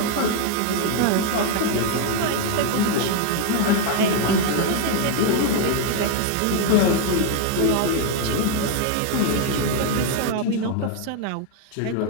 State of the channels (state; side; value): different; both; correlation 0.01